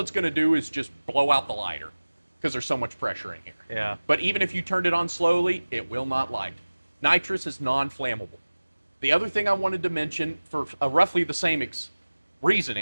going to do is just blow out the lighter because there's so much pressure in here. Yeah. But even if you turned it on slowly, it will not light. Nitrous is non-flammable. The other thing I wanted to mention for roughly the same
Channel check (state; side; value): inverted; both; correlation -1.00